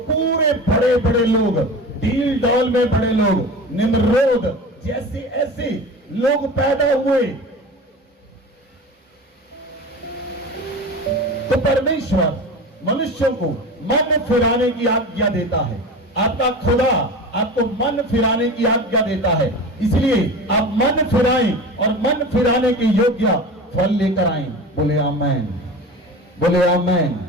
बड़े बड़े लोग, डील डॉल में बड़े लोग, निम्रोद जैसे ऐसे लोग पैदा हुए। तो परमेश्वर मनुष्यों को मन फिराने की आज्ञा देता है। आपका खुदा आपको मन फिराने की आज्ञा देता है, इसलिए आप मन फिराएं और मन फिराने के योग्य फल लेकर आएं। बोले आमेन, बोले आमेन,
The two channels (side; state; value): both; normal; correlation 0.32